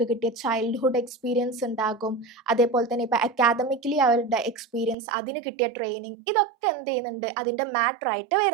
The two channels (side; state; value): left; drops out; at 5.0 s